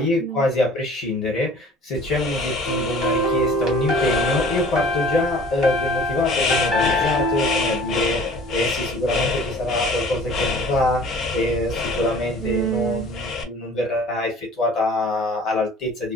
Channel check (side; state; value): both; normal; correlation 0.48